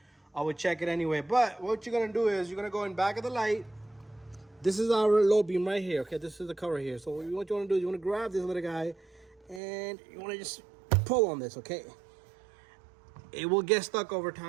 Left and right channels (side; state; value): left; drops out; at 9.6 s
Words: I would check it anyway. But what you're gonna do is you're gonna go in back of the light. This is our low beam right here, okay? This is the cover here. So what you want to do is you want to grab this little guy and you want to just pull on this, okay? It will get stuck over